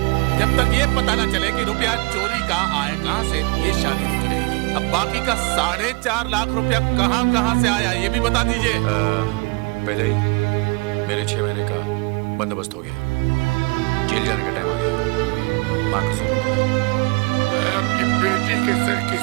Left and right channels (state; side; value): quieter; left; 27.8 dB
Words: जब तक ये पता न चले कि रुपया चोरी का आए कहां से, ये शादी रुकी रहेगी। अब बाकी का 4.5 लाख रुपया कहां से आया, ये भी बता दीजिए। पहले ही मेरे 6 महीने का बंदोबस्त हो गया, जेल जाने का टाइम आ गया। माँ को सुनो, मैं अपनी बेटी के सर की